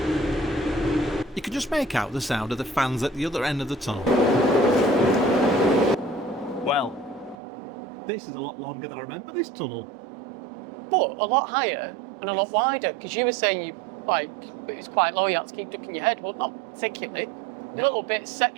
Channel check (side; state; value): left; drops out; at 7.4 s